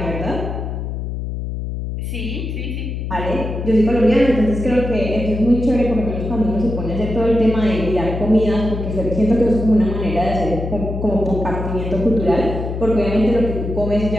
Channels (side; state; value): left; noise; hum, 5 dB below the sound